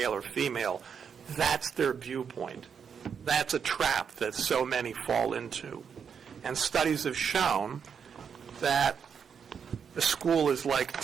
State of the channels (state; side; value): quieter; left; 6.9 dB